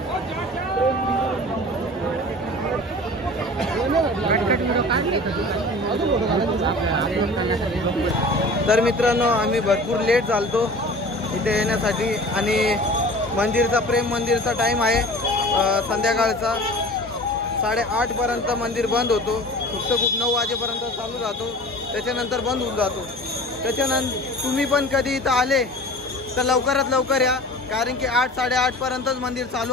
तर मित्रांनो आम्ही भरपूर लेट झालतो इथे येण्यासाठी आणि मंदिरचा प्रेम मंदिरचा टाईम आहे संध्याकाळचा 8:30 पर्यंत मंदिर बंद होतो. फक्त खूप 9 वाजेपर्यंत चालू राहतो, त्याच्यानंतर बंद होऊन जातो. त्याच्यानंतर तुम्ही पण कधी इथं आले तर लवकरात लवकर या कारण की 8-8:30 पर्यंतच मंदिर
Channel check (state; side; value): normal; both; correlation 0.40